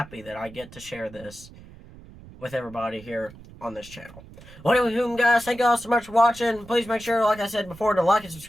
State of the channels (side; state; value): right; noise; rumble, 20 dB below the sound